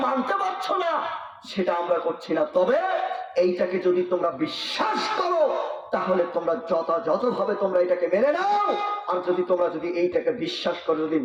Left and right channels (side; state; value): both; identical; correlation 1.00